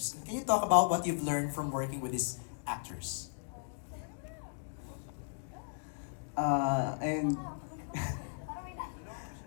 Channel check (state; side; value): silent; right; digital silence